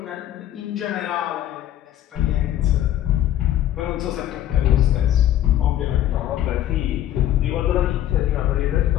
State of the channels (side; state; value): right; quieter; 12.3 dB